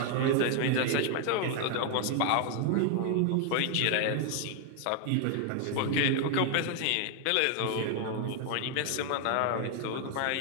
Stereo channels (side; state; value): both; different; correlation 0.00